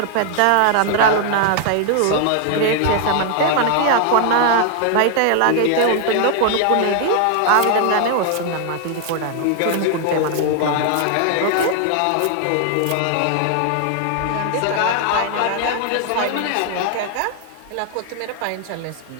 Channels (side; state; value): both; different; correlation 0.00